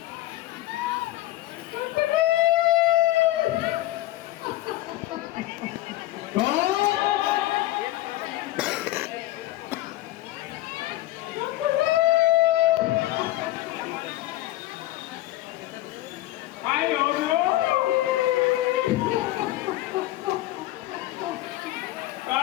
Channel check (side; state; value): right; quieter; 16.1 dB